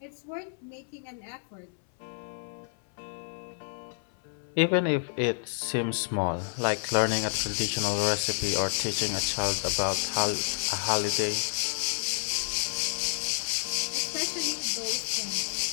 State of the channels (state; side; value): silent; right; 58 dB below the other